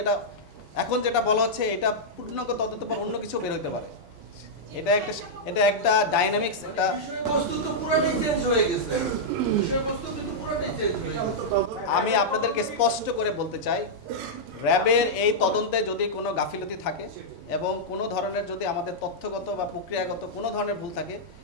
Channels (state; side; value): normal; both; correlation -0.08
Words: এটা এখন যেটা বলা হচ্ছে এটা পূর্ণাঙ্গ তদন্তের পর অন্য কিছু বের হতে পারে। এটা একটা এটা একটা ডাইনামিক্স একটা বিষয়বস্তু তো পুরোটাই চেঞ্জ হয়ে গেছে। বিষয়বস্তু কিন্তু পুরোটাই চেঞ্জ হয়ে গেছে। আমি আপনাদেরকে স্পষ্ট করে বলতে চাই, র্যাবের এই তদন্তে যদি কোনো গাফিলতি থাকে এবং কোনো ধরনের যদি আমাদের তথ্যগত বা প্রক্রিয়াগত কোনো ধরনের ভুল থাকে